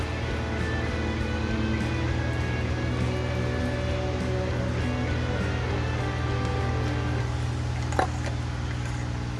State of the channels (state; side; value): identical; both; correlation 1.00